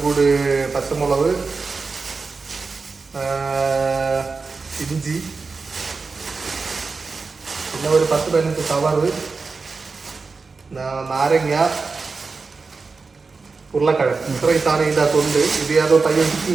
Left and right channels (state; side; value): quieter; left; 4.4 dB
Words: കൂടി പച്ചമുളക്, ഇഞ്ചി, പിന്നെ ഒരു 10-15 സവാള, നാരങ്ങ, ഉരുളക്കിഴങ്ങ്. ഇത്രയും സാധനം ഇതിൻ്റെ അകത്തുണ്ട്. ഇത് ഏതോ പയ്യൻ